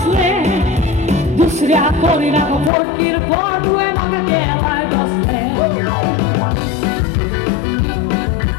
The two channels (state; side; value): drops out; right; at 2.7 s